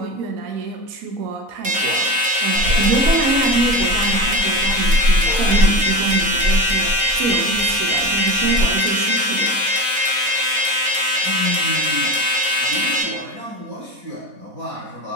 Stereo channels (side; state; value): left; late; 4.1 ms